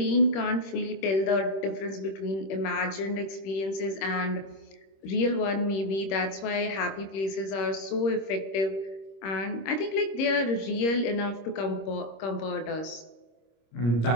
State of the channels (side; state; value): right; late; 26 ms